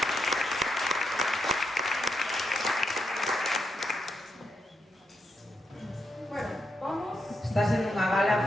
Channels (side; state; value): both; normal; correlation 0.82